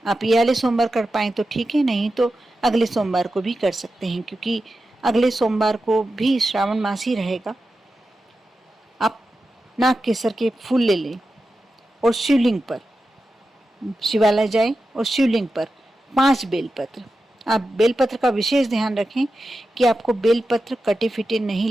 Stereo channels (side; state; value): both; normal; correlation 0.91